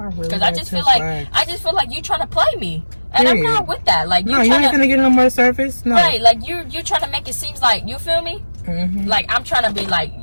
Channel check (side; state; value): both; inverted; correlation -1.00